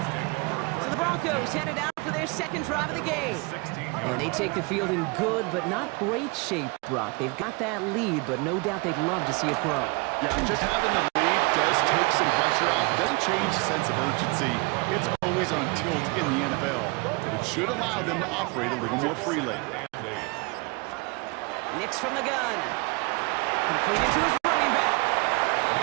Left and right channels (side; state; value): left; quieter; 28.4 dB